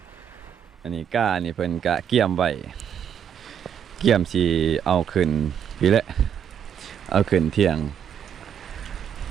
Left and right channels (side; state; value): left; quieter; 8.6 dB